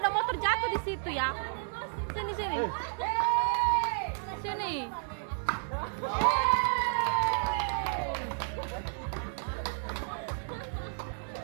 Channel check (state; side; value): silent; left; 57 dB below the other